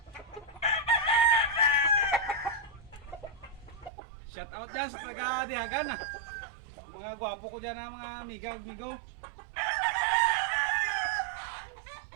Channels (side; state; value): left; drops out; at 3.9 s